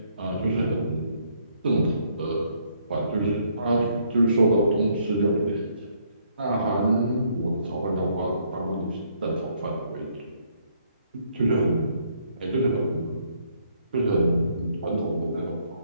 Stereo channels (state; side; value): inverted; both; correlation -0.69